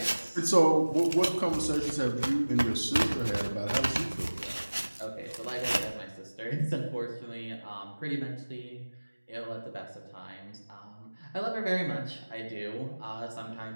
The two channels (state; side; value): inverted; both; correlation -1.00